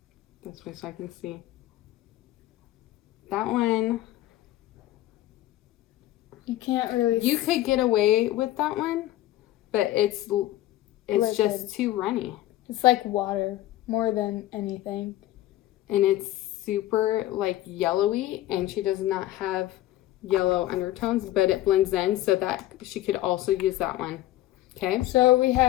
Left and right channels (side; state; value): right; quieter; 14.8 dB